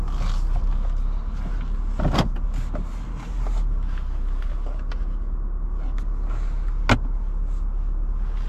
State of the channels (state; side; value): identical; both; correlation 1.00